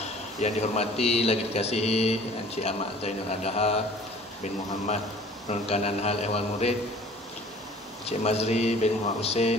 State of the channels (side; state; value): both; normal; correlation 0.49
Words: yang dihormati lagi dikasihi Encik Ahmad Zainul Adaha bin Muhammad, Penurun Kanan Hal Ehwal Murid, Encik Mazri bin Muhammad